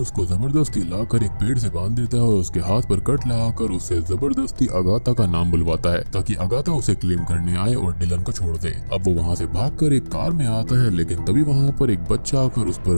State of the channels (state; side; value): inverted; both; correlation -1.00